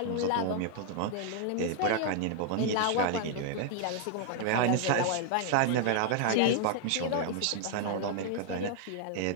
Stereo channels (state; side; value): different; both; correlation 0.00